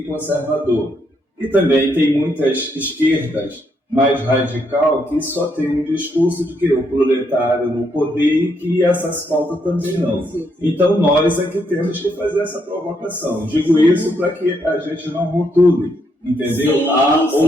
conservador. E também tem muitas esquerdas mais radical que só tem um discurso de que o proletário no poder e que essas pautas também não. Então nós é que temos que fazer essa provocação. Digo isso para que a gente não rotule, entendeu? Sim, A sim.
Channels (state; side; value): normal; both; correlation 0.76